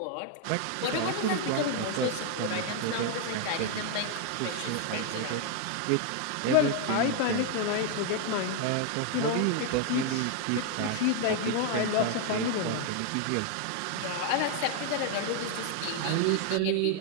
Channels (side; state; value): both; different; correlation 0.01